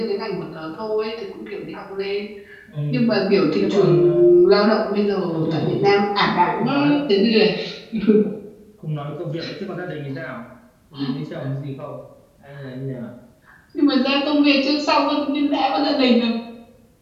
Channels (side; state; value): both; identical; correlation 1.00